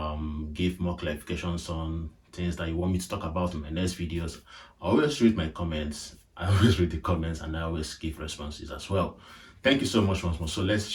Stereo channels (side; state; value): both; identical; correlation 1.00